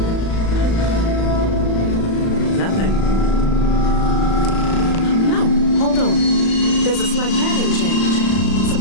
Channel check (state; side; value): late; right; 36 ms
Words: Nothing. No, hold on. There's a slight pattern change.